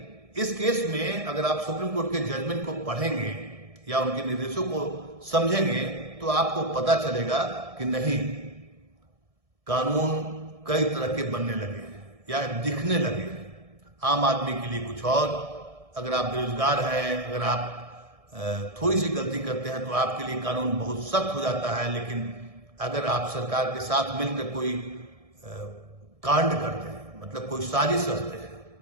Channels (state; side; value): late; left; 1.6 ms